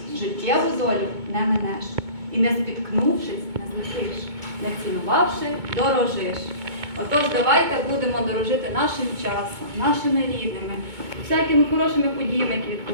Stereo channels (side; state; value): left; late; 2.2 ms